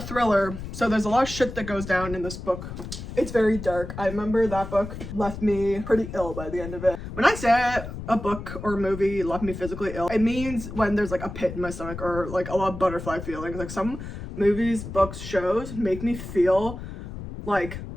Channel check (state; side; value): noise; left; rumble, 9 dB below the sound